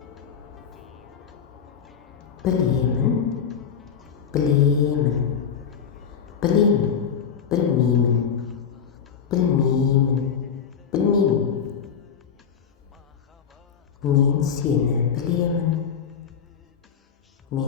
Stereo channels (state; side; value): quieter; right; 7.2 dB